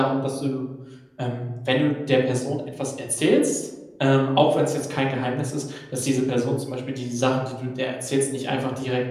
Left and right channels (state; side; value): identical; both; correlation 1.00